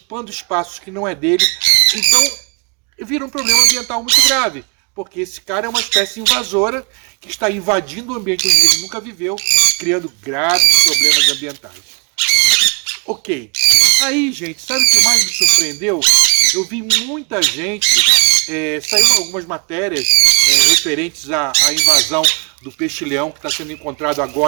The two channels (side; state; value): left; quieter; 36.9 dB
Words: espaços que não é dele, então vira um problema ambiental muito grave, porque esse cara é uma espécie invasora que está invadindo o ambiente onde ele nunca viveu, criando graves problemas ambientais. Ok. Aí, gente, sabe o que mais me surpreendeu? Eu vi muita gente, saiu algumas matérias referentes à invasão do peixe-leão que está sendo encontrado